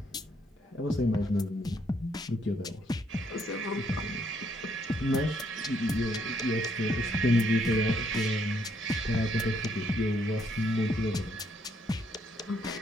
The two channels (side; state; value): both; normal; correlation 0.72